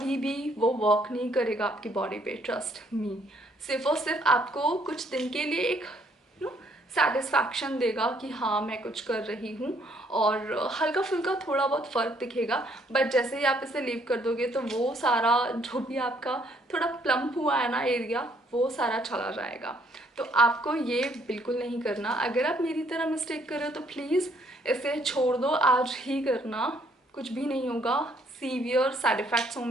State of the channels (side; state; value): both; normal; correlation 0.67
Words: भी वो वर्क नहीं करेगा आपकी बॉडी पे, ट्रस्ट मी। सिर्फ और सिर्फ आपको कुछ दिन के लिए एक सेटिस्फैक्शन देगा कि हाँ मैं कुछ कर रही हूँ, और हल्का फुल्का थोड़ा बहुत फ़र्क दिखेगा। बट जैसे ही आप इसे लीव कर दोगे तो वो सारा जो भी आपका थोड़ा प्लम्प हुआ है ना एरिया, वो सारा चला जाएगा। तो आपको ये बिल्कुल नहीं करना। अगर आप मेरी तरह मिस्टेक कर रहे हो तो प्लीज़ इसे छोड़ दो, आज ही करना, कुछ भी नहीं होगा। सीवियर साइड इफ़ेक्ट्स